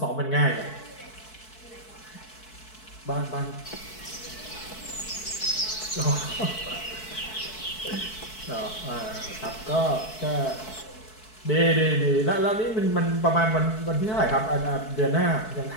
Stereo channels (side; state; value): right; late; 4.6 ms